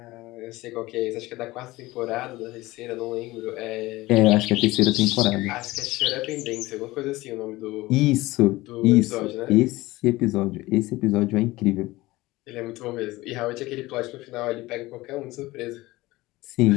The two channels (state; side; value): quieter; right; 19.3 dB